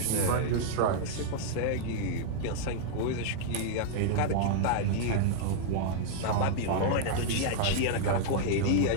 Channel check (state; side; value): different; both; correlation -0.01